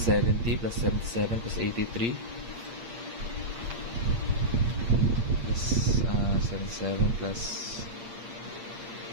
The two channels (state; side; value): late; left; 8.6 ms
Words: plus 77 plus 83 plus 77 plus,